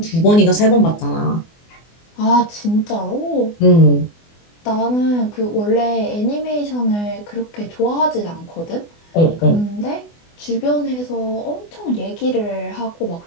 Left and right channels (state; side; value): late; right; 24 ms